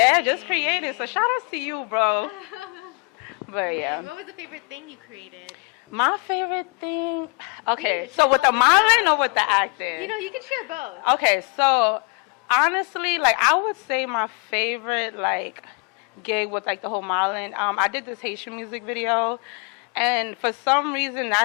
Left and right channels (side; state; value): right; quieter; 32.8 dB